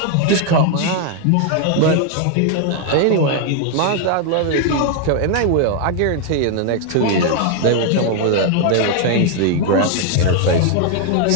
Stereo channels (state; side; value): different; both; correlation 0.00